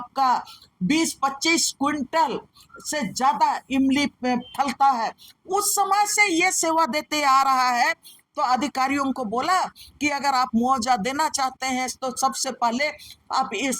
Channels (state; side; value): identical; both; correlation 1.00